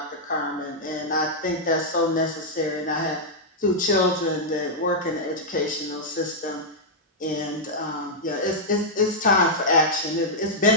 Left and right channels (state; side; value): normal; both; correlation -0.06